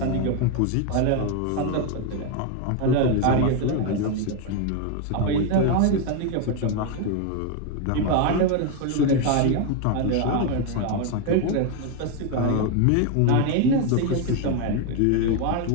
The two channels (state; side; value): different; both; correlation 0.01